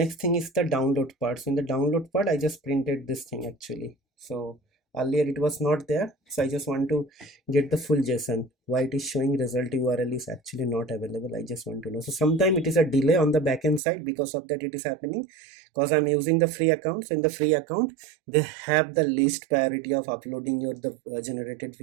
thing is the download part. So in the download part I just printed this thing actually. So earlier it was not there, so I just want to get the full JSON. Why it is showing result URL is actually not available, I just want to know. So sometime it is a delay on the backend side, because of that it is happening, because I'm using the free account. So in the free account they have the least priority of uploading your generated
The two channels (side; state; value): left; drops out; at 13.8 s